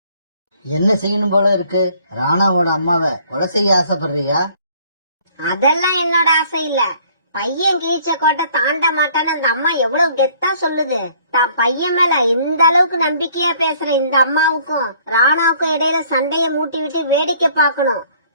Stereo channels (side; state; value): both; inverted; correlation -0.59